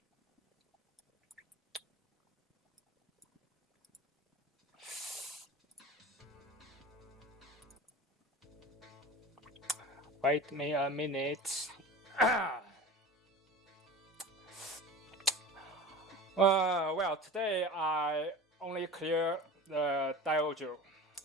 Wait me a minute. Well, today I only clear the Daioujou.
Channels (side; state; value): both; normal; correlation 0.35